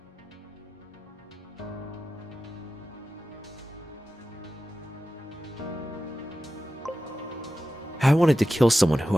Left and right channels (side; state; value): both; normal; correlation 0.93